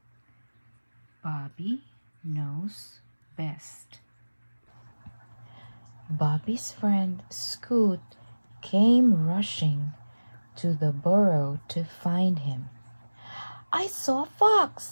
Bobby knows best. Bobby's friend Scoot came rushing to the burrow to find him. "I saw a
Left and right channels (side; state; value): both; inverted; correlation -1.00